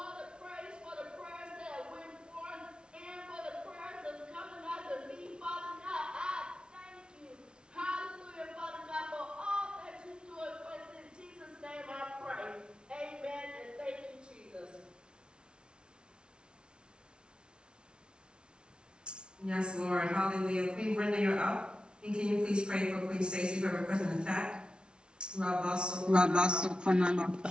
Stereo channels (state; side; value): late; left; 0.056 ms